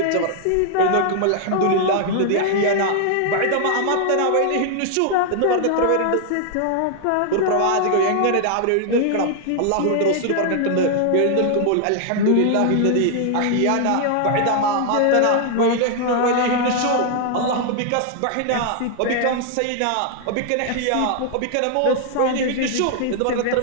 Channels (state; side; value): different; both; correlation 0.00